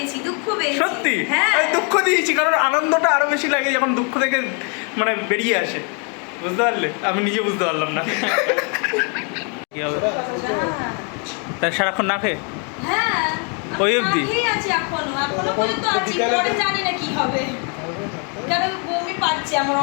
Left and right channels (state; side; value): quieter; right; 37.5 dB